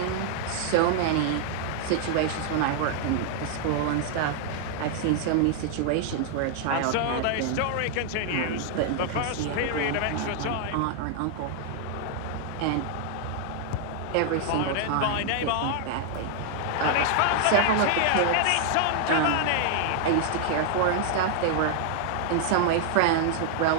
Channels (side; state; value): both; different; correlation 0.00